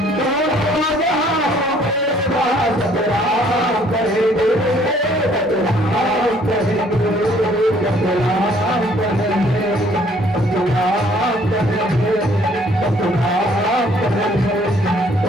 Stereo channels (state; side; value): normal; both; correlation 0.61